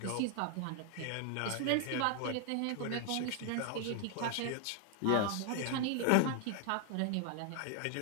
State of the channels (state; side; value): different; both; correlation 0.00